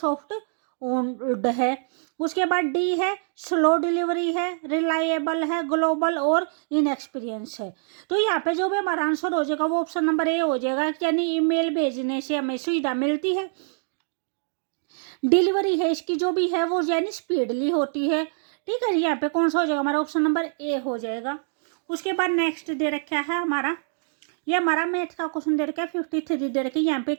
ओन्ड है। उसके बाद डी है स्लो डिलीवरी है, रिलायबल है, ग्लोबल और इनएक्सपीरियंस है। तो यहाँ पे जो भी हमारा आंसर हो जाएगा वो ऑप्शन नंबर ए हो जाएगा, यानी ईमेल भेजने से हमें सुविधा मिलती है। डिलीवरी है इसकी जो भी है वो यानी स्पीडली होती है। ठीक है, यहाँ पे कौन सा हो जाएगा? हमारा ऑप्शन नंबर ए हो जाएगा। उसके बाद नेक्स्ट दे रखा है हमारा, ये हमारा मैथ का क्वेश्चन दे रखा है 53 दे रखा है। यहाँ पे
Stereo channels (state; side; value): silent; left; digital silence